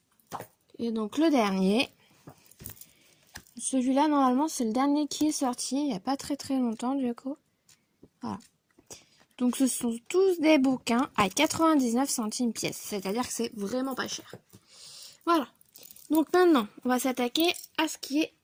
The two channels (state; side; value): identical; both; correlation 1.00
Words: Et donc le dernier. Celui-là, normalement, c'est le dernier qui est sorti il n'y a pas très longtemps, du coup. Voilà. Donc ce sont tous des bouquins à 99 centimes pièce. C'est-à-dire que c'est vraiment pas cher. Voilà. Donc maintenant, on va s'attaquer à ce qui est